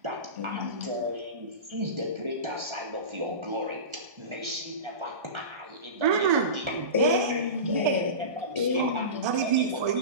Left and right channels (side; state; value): left; late; 1.2 ms